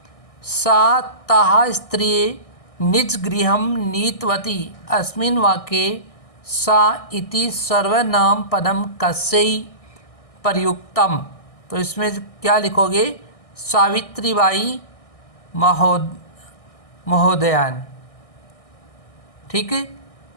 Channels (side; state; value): right; late; 1.6 ms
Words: सा ताः स्त्रिये निज गृहं नीतवती, अस्मिन् वाक्ये सा इति सर्वनाम पदम कस्यै प्रयुक्तम, तो इसमें क्या लिखोगे, सावित्रीबाई महोदयान। ठीक है।